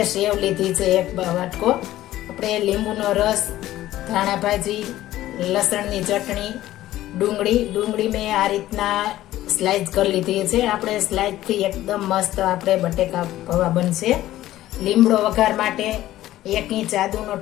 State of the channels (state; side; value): quieter; right; 14.6 dB